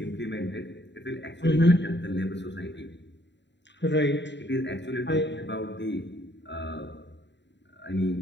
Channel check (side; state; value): right; late; 0.52 ms